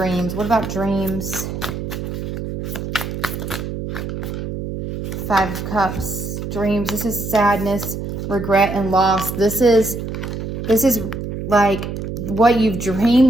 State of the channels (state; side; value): noise; right; hum, 6 dB below the sound